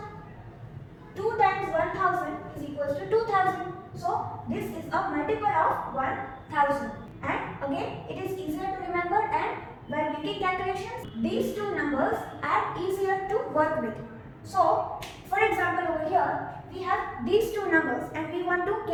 2 times 1000 is equals to 2000. So this is a multiple of 1000. And again it is easier to remember, and while making calculations these two numbers are easier to work with. So for example over here we have these two numbers and we want to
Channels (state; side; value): identical; both; correlation 1.00